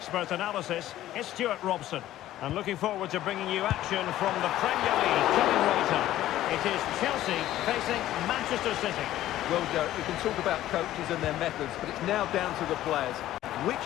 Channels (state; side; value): quieter; right; 13.8 dB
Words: analysis is Stuart Robson. And looking forward to bringing you action from the Premier League coming right up. It is Chelsea facing Manchester City. Well, Derek, we can talk about coaches and their methods, but it's now down to the players.